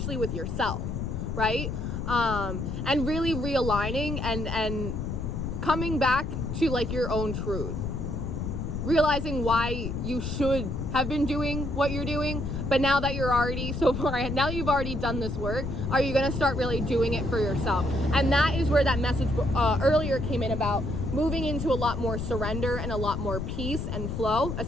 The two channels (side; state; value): left; noise; rumble, 3 dB below the sound